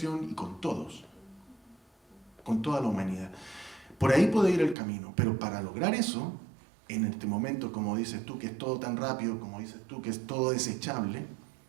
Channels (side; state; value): left; drops out; at 4.8 s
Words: y con todos, con toda la humanidad. Por ahí puede ir el camino, pero para lograr eso, en este momento, como dices tú, que es todo tan rápido, como dices tú, que es todo desechable,